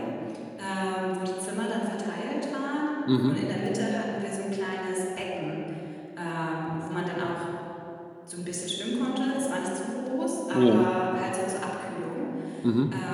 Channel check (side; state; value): both; identical; correlation 1.00